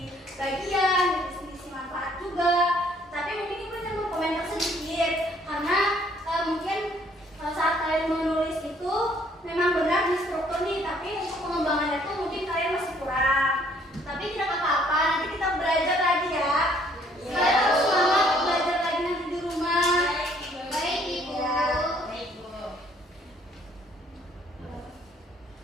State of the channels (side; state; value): both; normal; correlation 0.62